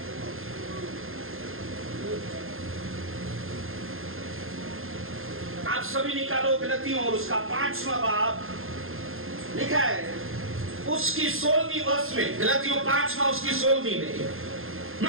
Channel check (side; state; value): left; late; 0.60 ms